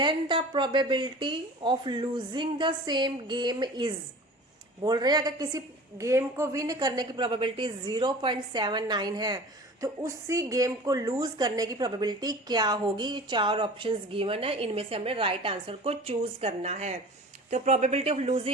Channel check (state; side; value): normal; both; correlation 0.40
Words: the probability of losing the same game is. बोल रहे हैं अगर किसी गेम को विन करने की प्रोबेबिलिटी 0.79 है तो उसी गेम को लूज करने की प्रोबेबिलिटी क्या होगी? 4 ऑप्शंस गिवन है, इनमें से हमने राइट आंसर को चूज करना है। तो प्रोबेबिलिटी ऑफ